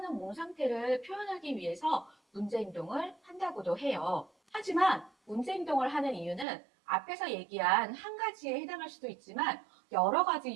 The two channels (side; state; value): left; drops out; at 6.5 s